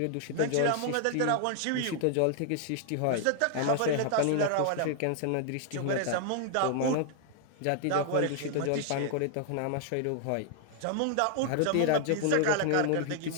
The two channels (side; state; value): both; different; correlation 0.00